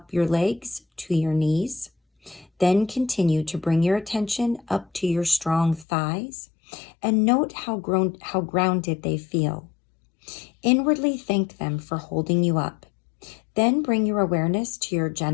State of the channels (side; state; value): right; drops out; at 5.9 s